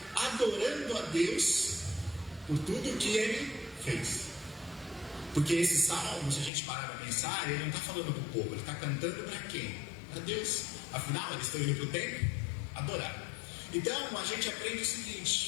adorando a Deus por tudo que ele fez. Porque esse salmo, se a gente parar para pensar, ele não está falando para o povo, ele está cantando para quem? Para Deus. Afinal, eles estão indo para o templo adorar. Então a gente aprende o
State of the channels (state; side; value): drops out; right; at 6.5 s